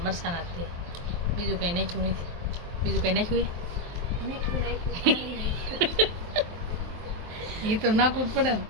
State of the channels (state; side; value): late; left; 23 ms